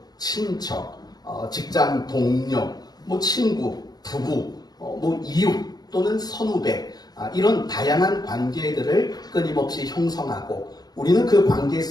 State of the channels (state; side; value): late; right; 0.19 ms